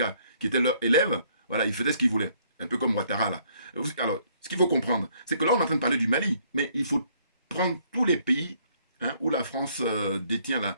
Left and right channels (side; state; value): both; inverted; correlation -0.65